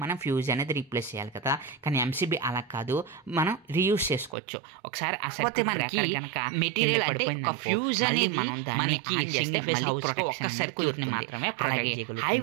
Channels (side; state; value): left; drops out; at 4.4 s